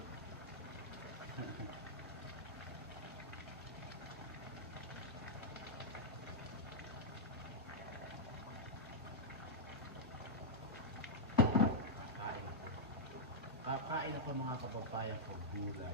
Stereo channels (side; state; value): both; normal; correlation -0.07